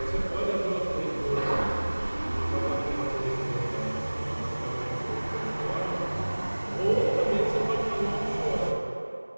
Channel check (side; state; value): both; inverted; correlation -1.00